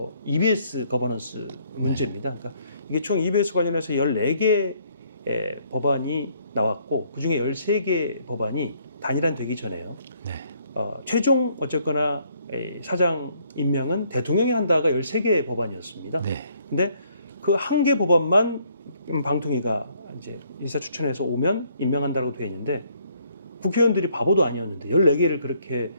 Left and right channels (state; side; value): inverted; both; correlation -0.67